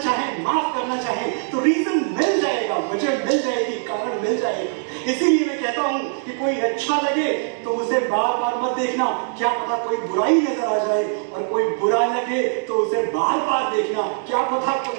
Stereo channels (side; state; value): left; silent; digital silence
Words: माफ करना चाहें तो रीजन मिल जाएगा, वजह मिल जाएगी, कारण मिल जाएगा। इसीलिए मैं कहता हूं कि कोई अच्छा लगे तो उसे बार बार मत देखना, क्या पता कोई बुराई नजर आ जाए, और कोई बुरा लगे तो उसे बार बार देखना, क्या पता